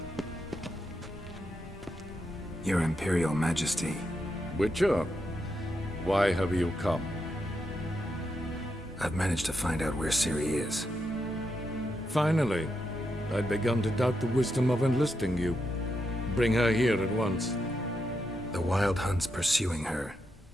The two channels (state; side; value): normal; both; correlation 0.83